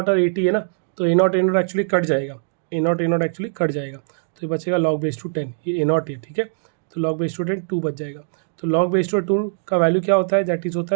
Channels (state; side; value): silent; left; digital silence